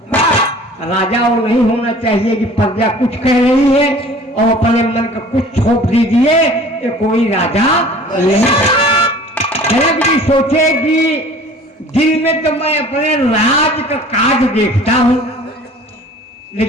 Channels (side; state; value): both; normal; correlation 0.47